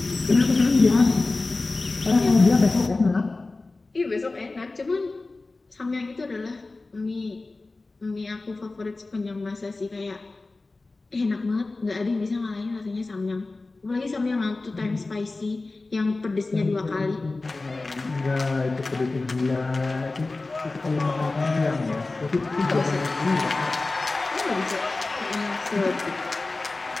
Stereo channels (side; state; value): right; quieter; 3.4 dB